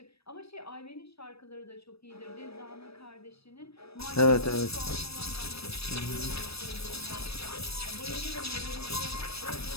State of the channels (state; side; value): late; right; 0.78 ms